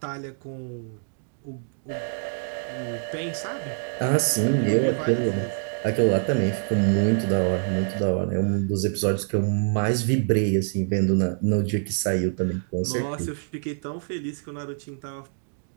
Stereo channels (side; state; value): left; silent; digital silence